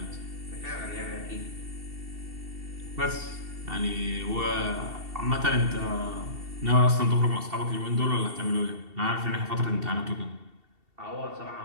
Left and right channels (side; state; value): left; late; 2.7 ms